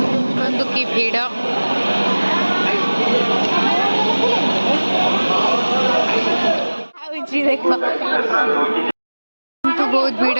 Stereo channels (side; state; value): both; inverted; correlation -1.00